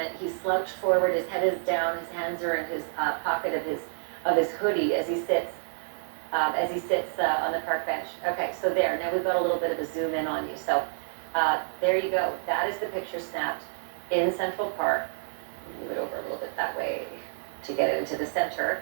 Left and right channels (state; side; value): silent; left; digital silence